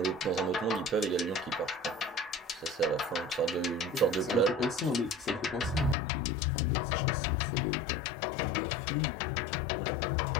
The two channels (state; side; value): drops out; right; at 6.0 s